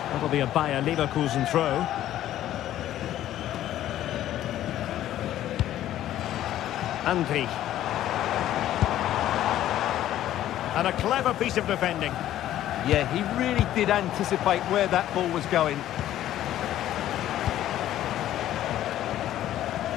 That'll be a Bayer Leverkusen throw. Andri. And a clever piece of defending. Yeah, he really did anticipate where that ball was going.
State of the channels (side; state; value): right; quieter; 12.7 dB